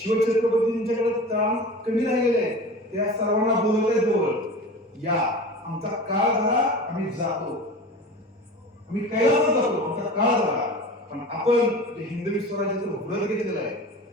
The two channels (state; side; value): normal; both; correlation 0.35